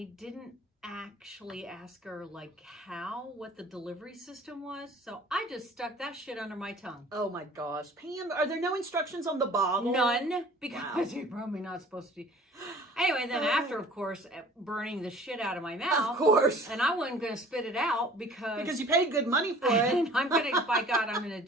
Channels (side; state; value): both; normal; correlation 0.48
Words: didn't actually ask her what the delivery system was, so I just stuck that shit under my tongue. Oh my gosh. Pam, are there no instructions on the bottle? None, because Wow. you're probably not supposed to. Anyway, then after, of course, burning the shit out of my mouth. Of course. And I wasn't going to spit it out because you paid good money for it. and I'm going to, by God, I'm going